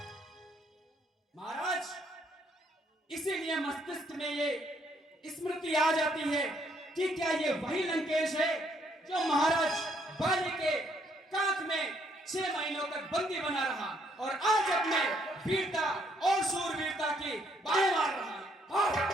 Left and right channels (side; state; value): both; normal; correlation 0.70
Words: महाराज, इसीलिए मस्तिष्क में ये स्मृति आ जाती है कि क्या ये वही लंकेश है जो महाराज बाली के कांख में 6 महीनों तक बंदी बना रहा और आज अपने वीरता और शूरवीरता की बाहें मार रहा है।